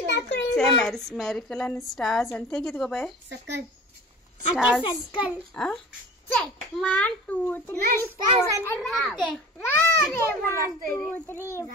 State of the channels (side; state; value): both; normal; correlation 0.39